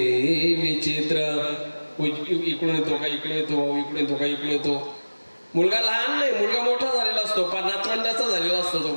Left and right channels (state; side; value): inverted; both; correlation -1.00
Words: विचित्र. इकडून येतो का इकडून येतो, इकडून येतो का इकडून येतो. मुलगा लहान नाही, मुलगा मोठा झालेला असतो, 50 वर्षाचा झालेला असतो, तो